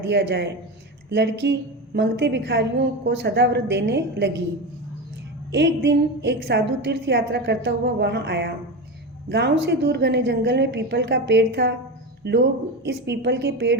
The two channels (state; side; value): normal; both; correlation 0.21